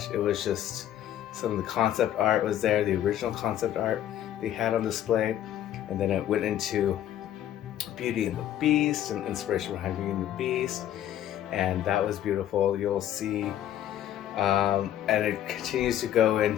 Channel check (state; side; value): quieter; right; 11.5 dB